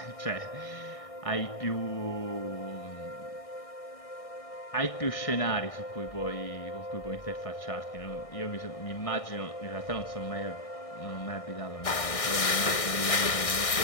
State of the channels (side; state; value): right; late; 1.6 ms